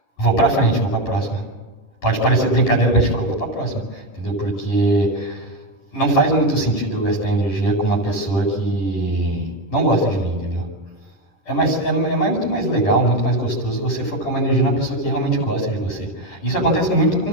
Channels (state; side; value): late; right; 10 ms